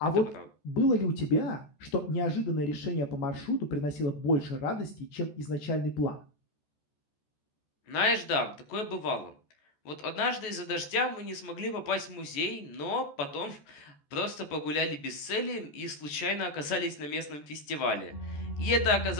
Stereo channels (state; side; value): late; right; 14 ms